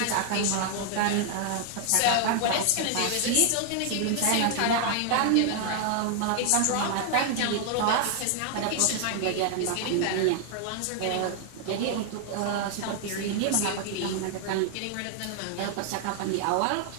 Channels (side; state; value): both; different; correlation 0.00